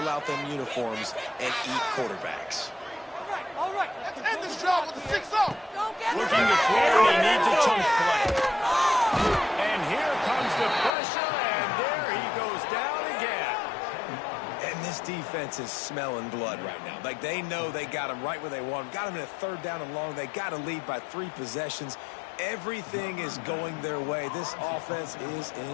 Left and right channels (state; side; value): drops out; right; at 10.9 s